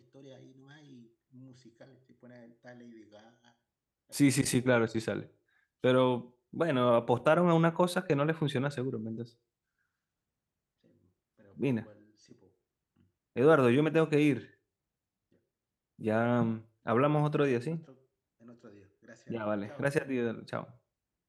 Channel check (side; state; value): both; identical; correlation 1.00